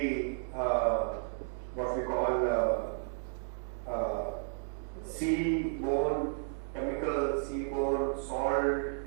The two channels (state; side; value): silent; left; digital silence